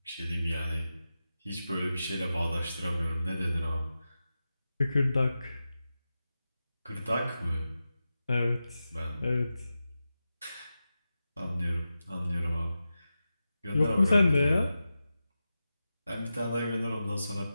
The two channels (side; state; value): both; inverted; correlation -0.92